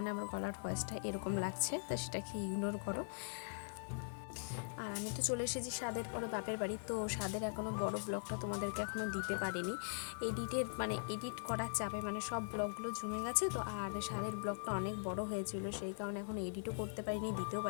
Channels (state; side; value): silent; right; digital silence